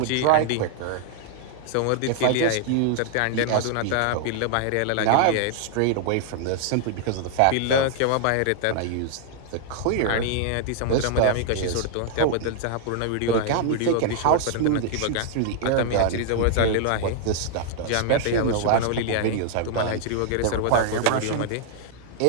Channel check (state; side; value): different; both; correlation -0.01